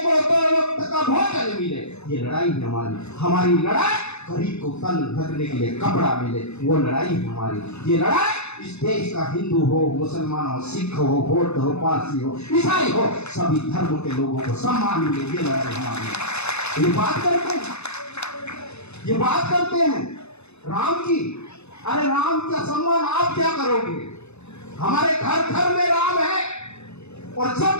2 वक्त का भोजन मिले, ये लड़ाई हमारी। हमारी लड़ाई गरीब को तन ढकने के लिए कपड़ा मिले, वो लड़ाई हमारी। ये लड़ाई इस देश का हिंदू हो, मुसलमान हो, सिख हो, बौद्ध हो, पारसी हो, ईसाई हो, सभी धर्म के लोगों को सम्मान मिले, ये लड़ाई हमारी। ये बात करते हैं राम की। अरे राम का सम्मान आप क्या करोगे? हमारे घर घर में राम है, और जब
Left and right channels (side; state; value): right; late; 0.81 ms